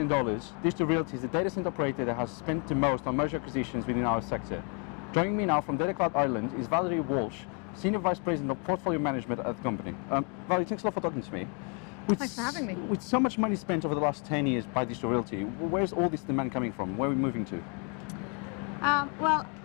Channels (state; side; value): quieter; right; 36.6 dB